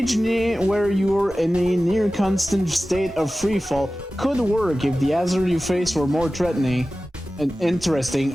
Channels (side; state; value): both; normal; correlation 0.96